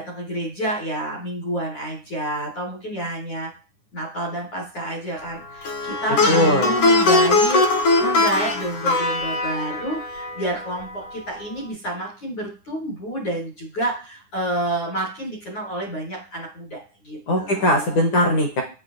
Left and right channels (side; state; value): right; late; 9.8 ms